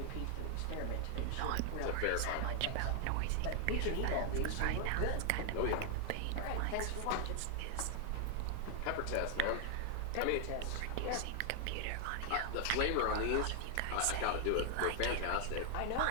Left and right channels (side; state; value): both; different; correlation 0.00